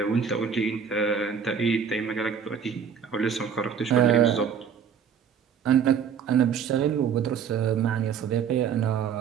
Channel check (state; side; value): quieter; left; 7.2 dB